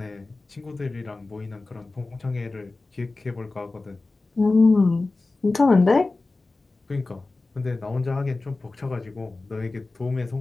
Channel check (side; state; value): right; quieter; 3.4 dB